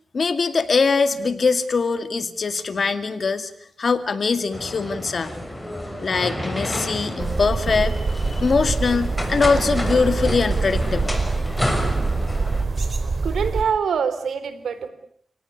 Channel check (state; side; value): normal; both; correlation 0.89